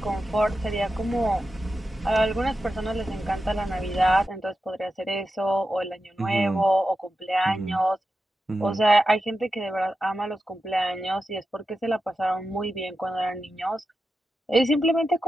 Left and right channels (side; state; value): both; normal; correlation 0.90